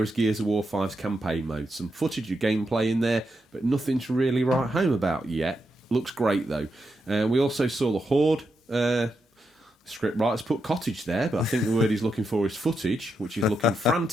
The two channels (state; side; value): normal; both; correlation 0.84